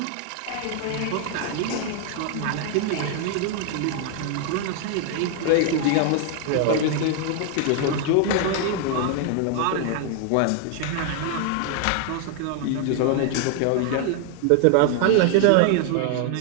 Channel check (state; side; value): different; both; correlation 0.00